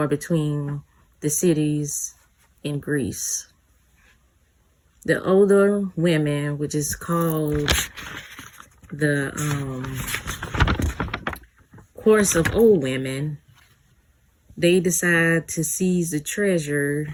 between the cities in Greece. The older women, which is called the Course of Old Women, they decide to seize the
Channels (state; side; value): identical; both; correlation 1.00